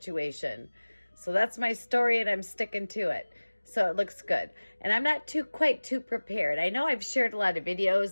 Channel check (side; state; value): both; inverted; correlation -1.00